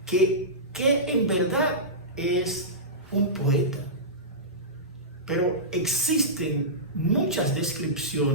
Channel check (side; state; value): both; normal; correlation -0.17